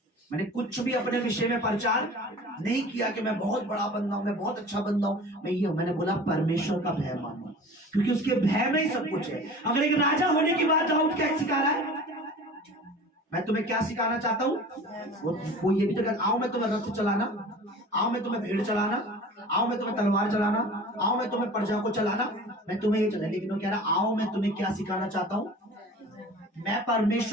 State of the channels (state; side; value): normal; both; correlation 0.41